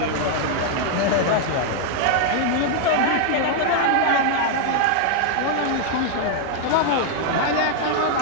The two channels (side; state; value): both; different; correlation 0.00